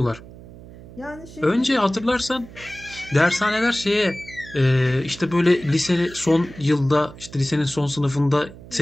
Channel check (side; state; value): right; noise; hum, 18 dB below the sound